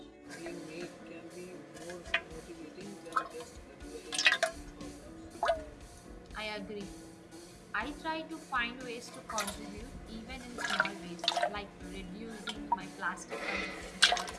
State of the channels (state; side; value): identical; both; correlation 1.00